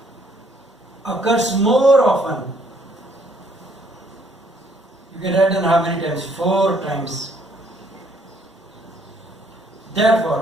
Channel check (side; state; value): both; normal; correlation 0.66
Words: occurs more often. You can write down how many times? 4 times.